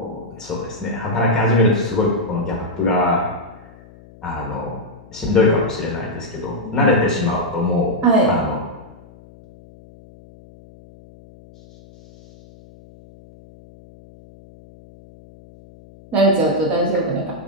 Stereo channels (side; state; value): left; noise; hum, 23 dB below the sound